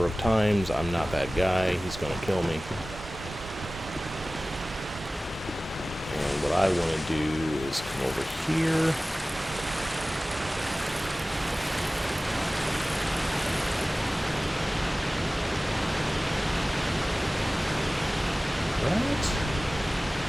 of times. I'm not that guy. He's going to kill me. And what I want to do is come over here. Right?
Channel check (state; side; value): normal; both; correlation 0.97